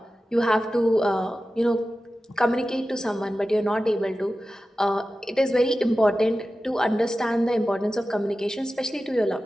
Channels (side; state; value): both; normal; correlation 0.94